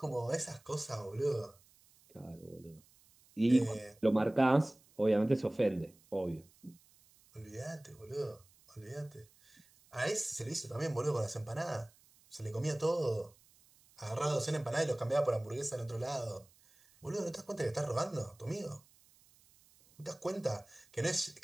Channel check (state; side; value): noise; right; hiss, 29 dB below the sound